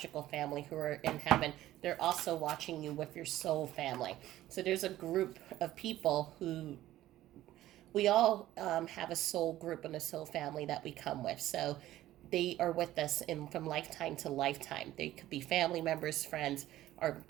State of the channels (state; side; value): quieter; left; 14.4 dB